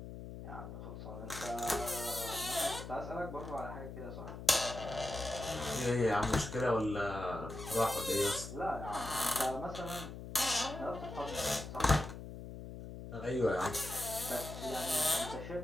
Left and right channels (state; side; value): noise; left; hum, 10 dB below the sound